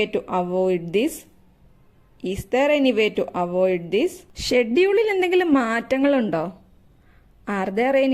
to avoid this? Is there any way to avoid this? ഷെഡ്യൂളിൽ എന്തെങ്കിലും മാറ്റങ്ങളുണ്ടോ? Are there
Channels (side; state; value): both; identical; correlation 1.00